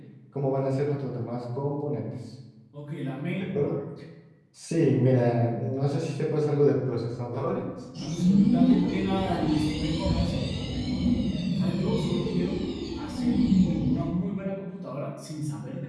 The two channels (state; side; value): identical; both; correlation 1.00